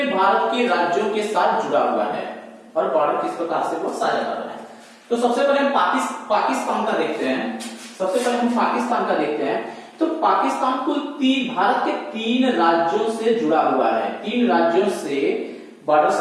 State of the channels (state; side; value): identical; both; correlation 1.00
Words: भारत के राज्यों के साथ जुड़ा हुआ है और बॉर्डर किस प्रकार से वो साझा कर रहा है। तो सबसे पहले हम पाकिस्तान का देखते हैं। तो पाकिस्तान कुल भारत के 3 राज्यों से जुड़ा हुआ है। 3 राज्यों से बॉर्डर